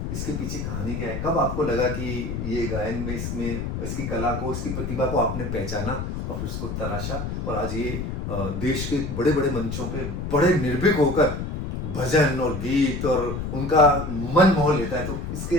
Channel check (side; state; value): left; noise; rumble, 4 dB below the sound